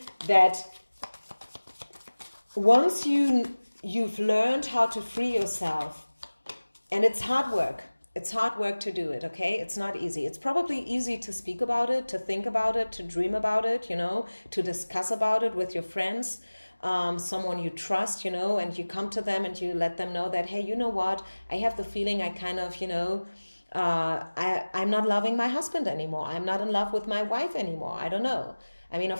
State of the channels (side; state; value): both; inverted; correlation -1.00